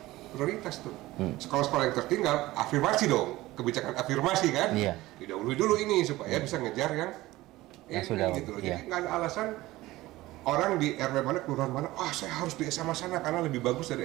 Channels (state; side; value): quieter; left; 17.9 dB